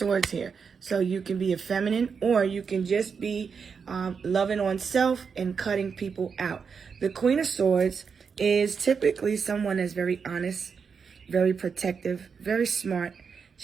here. So you can be a feminine, or you can just be loving on self and cutting people out. The Queen of Swords is typically someone that's very honest, very protective, very smart.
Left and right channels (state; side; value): quieter; left; 5.9 dB